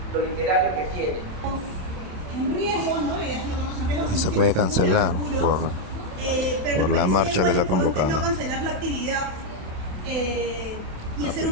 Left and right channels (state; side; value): late; left; 27 ms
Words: lo literario que tiene. En riesgo, ¿no? Se puede cancelar por la marcha que se ha convocado. No cancelar la actividad y hacer